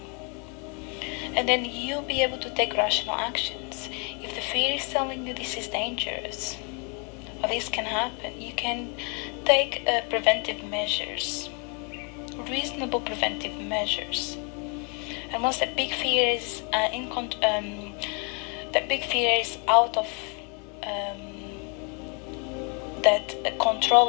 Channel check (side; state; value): right; quieter; 35.6 dB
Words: And then you'll be able to take rational actions. If the fear is telling you this is dangerous, or this can happen, you can take preventive measures, reasonable preventive measures. And once that big fear is out of that